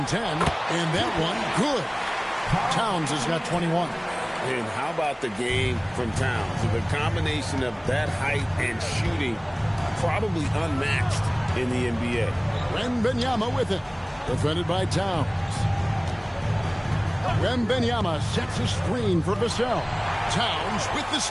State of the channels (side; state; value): both; identical; correlation 1.00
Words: 10, and that one, good. Towns has got 21. And how about the game from Towns? The combination of that height and shooting, probably unmatched in the NBA. Wembanyama with it. Defended by Towns. Wembanyama sets a screen for Vassell. Towns with the